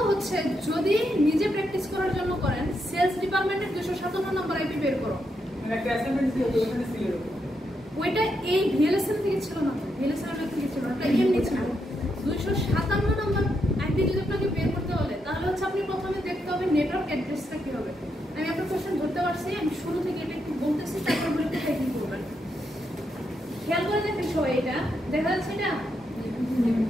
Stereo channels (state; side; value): normal; both; correlation 0.81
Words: হচ্ছে যদি নিজে প্র্যাকটিস করার জন্য করেন, সেলস ডিপার্টমেন্টের 257 নম্বর আইপি বের করো। ওইটা এই ভিএলএসএম থেকে ছিল না, ভিএলএসএম থেকে ছিল না, এটা এমনি ছিল। 257 নম্বর আইপি যদি আপনাকে বের করতে বলে, তাহলে হচ্ছে আপনি প্রথমে দেখতে হবে নেটওয়ার্ক অ্যাড্রেসটা কি হবে। আমি আপনার কোশ্চেন ধরতে পারছি, আমি শুরু থেকে এটা একটু বলতেছি, তারপর বলে কোথায় কি করবেন। খেয়াল করে দেখেন সবাই, এটা দেখা যাচ্ছে এটা